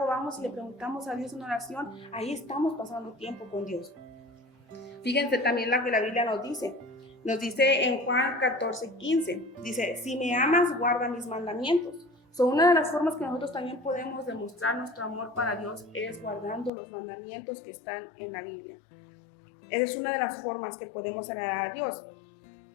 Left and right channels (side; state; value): right; drops out; at 16.7 s